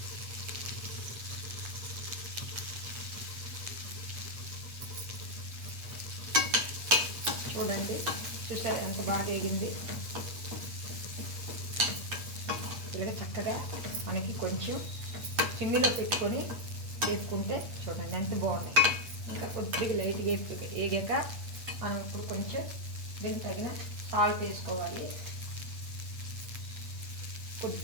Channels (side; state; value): left; late; 8.4 ms